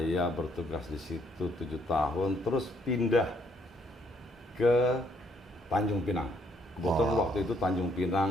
bertugas di situ 7 tahun, terus pindah ke Tanjung Pinang. Kebetulan waktu itu Tanjung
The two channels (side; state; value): both; normal; correlation 0.69